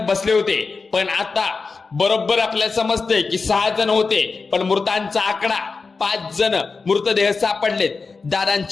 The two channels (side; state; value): right; quieter; 4.4 dB